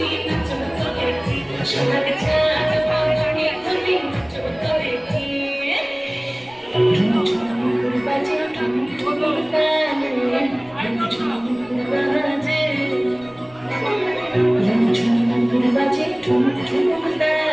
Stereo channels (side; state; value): right; noise; rumble, 29 dB below the sound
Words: নাচত দেখি, সোহাগ চাঁদ পদ্ম নিধনি নাচত দেখি। বাজে ঠুনঠুন তালে, ঠুনঠুন বাজে, বাজে ঠুনঠুন